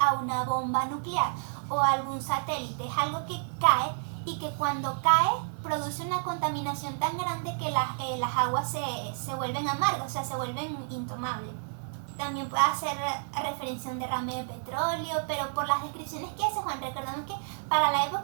una bomba nuclear o a algún satélite. Es algo que cae y que cuando cae produce una contaminación tan grande que las aguas se vuelven amargas, o sea, se vuelven intomables. También puede hacer referencia a un derrame de petróleo, pero por las descripciones que hace Juan, recordamos que para la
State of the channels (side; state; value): left; silent; digital silence